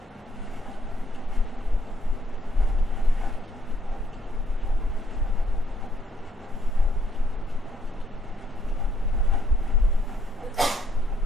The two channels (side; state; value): both; normal; correlation 0.70